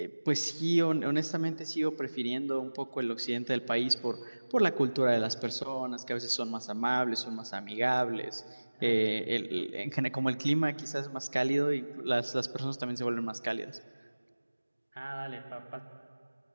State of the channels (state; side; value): inverted; both; correlation -1.00